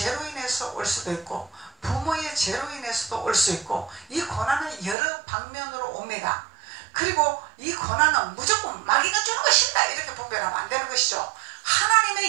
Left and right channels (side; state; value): left; drops out; at 5.0 s